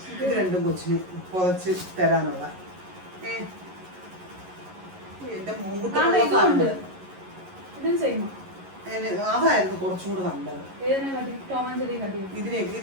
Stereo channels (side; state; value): left; late; 11 ms